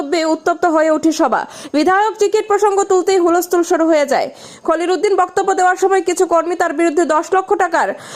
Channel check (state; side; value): identical; both; correlation 1.00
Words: উত্তপ্ত হয়ে ওঠে সভা। বিধায়ক টিকিট প্রসঙ্গ তুলতেই হুলস্থুল শুরু হয়ে যায়। খলিল উদ্দিন বক্তব্য দেওয়ার সময় কিছু কর্মী তার বিরুদ্ধে 10 লক্ষ টাকার